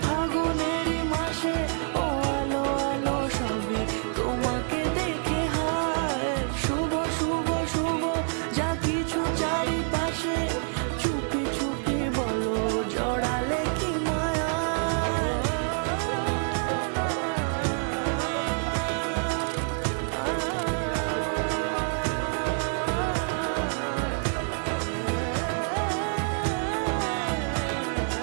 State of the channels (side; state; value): left; silent; 60 dB below the other